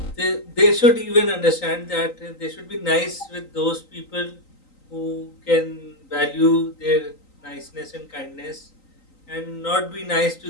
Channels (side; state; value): right; late; 3.9 ms